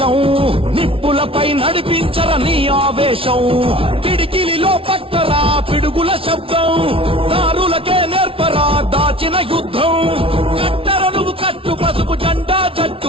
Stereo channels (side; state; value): left; late; 0.26 ms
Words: నిప్పులపై నడిపించర నీ ఆవేశం. పిడికిలిలో పట్టరా పిడుగుల శబ్దం, దారులకే నేర్పరా దాచిన యుద్ధం. కట్టర నువ్వు కట్టు పసుపు జెండా